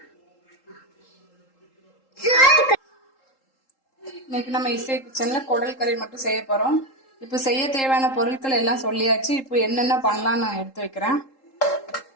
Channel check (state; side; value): late; right; 3.8 ms